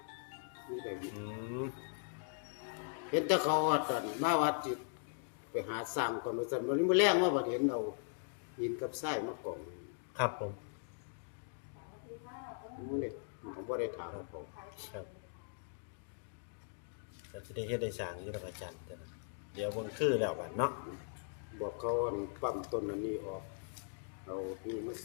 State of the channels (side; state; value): right; silent; digital silence